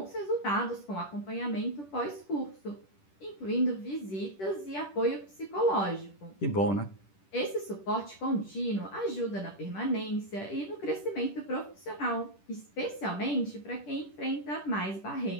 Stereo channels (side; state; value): right; late; 10 ms